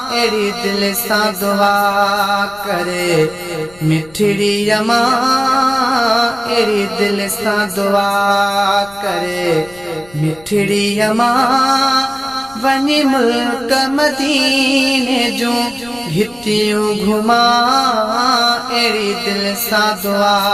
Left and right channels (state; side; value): noise; left; rumble, 25 dB below the sound